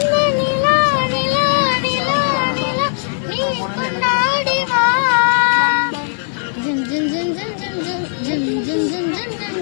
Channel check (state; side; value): silent; right; digital silence